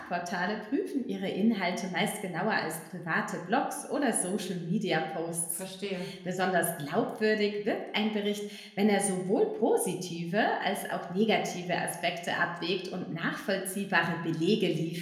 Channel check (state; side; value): identical; both; correlation 1.00